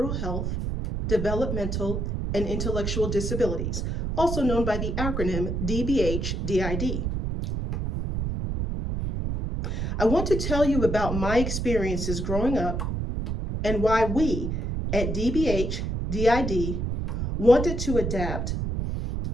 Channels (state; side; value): noise; right; rumble, 2 dB below the sound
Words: Health, Developmental, and Intellectual Disabilities, also known by the acronym DBHDID. I want to tell you about my experiences growing up and why we at DBHDID wanted to adapt